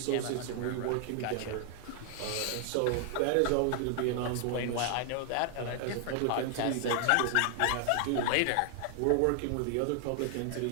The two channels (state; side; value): different; both; correlation 0.00